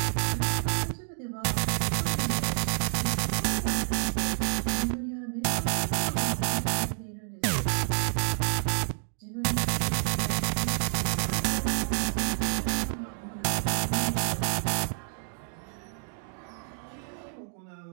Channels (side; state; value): left; silent; 59 dB below the other